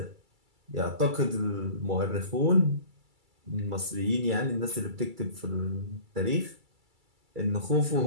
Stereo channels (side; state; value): left; late; 2.3 ms